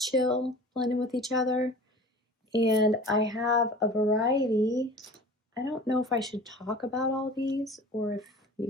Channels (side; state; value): both; normal; correlation 0.41